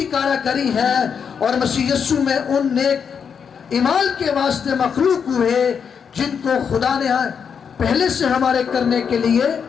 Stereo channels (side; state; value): right; quieter; 6.8 dB